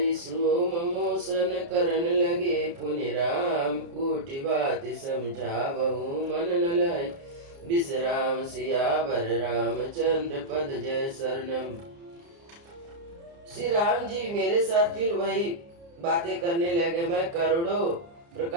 सोम मोसन करन लगे पुनि राम कोटि बात समझावहु मन न लाई विश्राम सियावर रामचंद्र पद जय शरणम। श्री राम जी मेरे साथ फिर वही बातें करने लगे। मैं करोड़ों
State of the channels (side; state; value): left; late; 29 ms